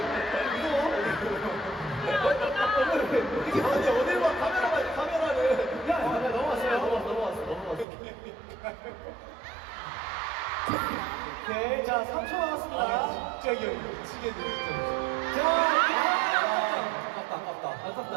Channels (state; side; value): drops out; left; at 7.9 s